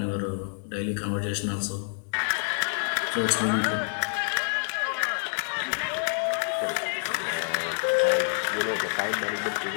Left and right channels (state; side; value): silent; right; 60 dB below the other